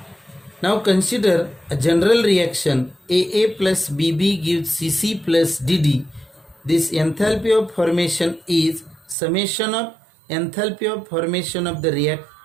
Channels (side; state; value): left; drops out; at 9.2 s